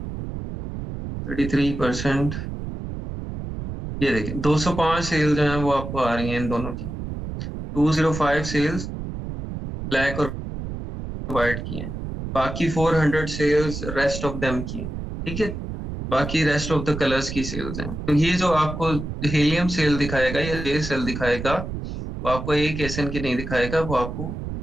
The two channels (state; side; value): noise; right; rumble, 7 dB below the sound